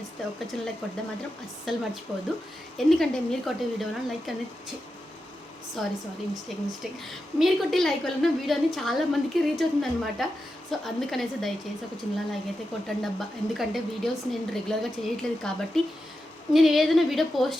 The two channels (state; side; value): normal; both; correlation 0.89